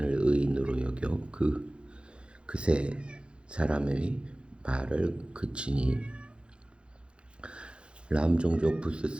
의인으로 여겨 그새 사람의 말을 그치니 람 종족 부스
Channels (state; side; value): late; left; 0.056 ms